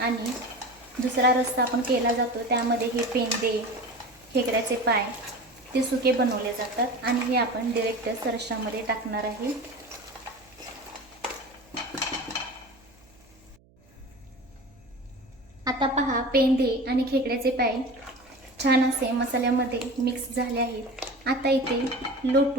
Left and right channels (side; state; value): right; noise; hum, 30 dB below the sound